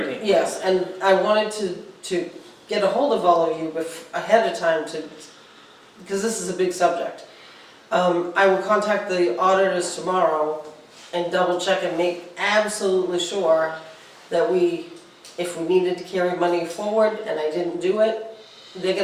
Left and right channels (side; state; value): both; identical; correlation 1.00